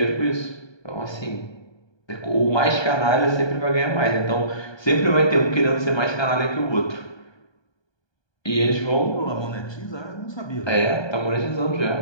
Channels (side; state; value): right; late; 1.2 ms